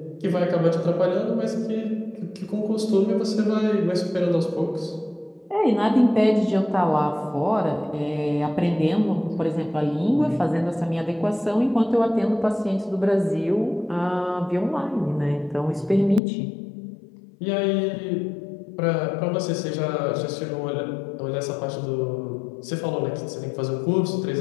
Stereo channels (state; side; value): drops out; right; at 16.2 s